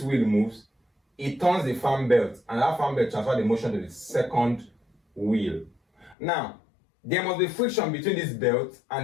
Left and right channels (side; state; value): right; drops out; at 6.2 s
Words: wheel moves, it turns the fan belt, and that fan belt transfers the motion to the second wheel. Now, there must be friction between this belt